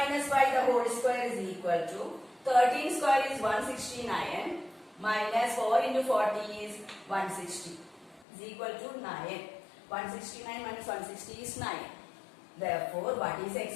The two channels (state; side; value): drops out; right; at 8.2 s